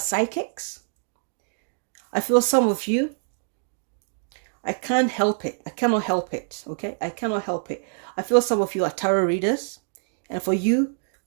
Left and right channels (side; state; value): left; silent; digital silence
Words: I feel some of you, I can't help it. I cannot help it. Okay? I cannot help it. I feel some of you are tarot readers. And for you,